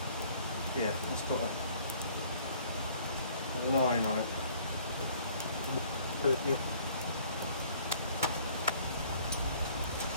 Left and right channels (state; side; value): inverted; both; correlation -0.57